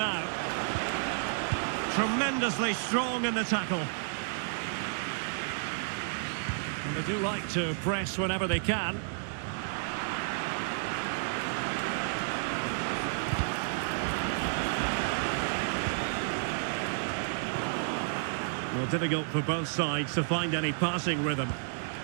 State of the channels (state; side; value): silent; left; digital silence